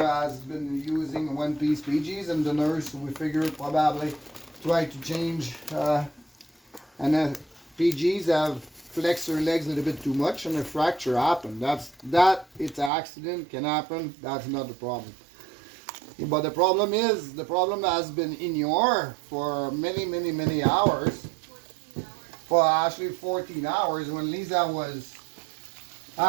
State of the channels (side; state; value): left; drops out; at 12.9 s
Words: has been using one piece PGs, and the nurse we figure probably try to change and PGs have flexed her legs a little bit too much and a fracture happened. It's an accident, can happen. That's not the problem. But the problem has been in your for many hours. For actually 14 hours when Lisa was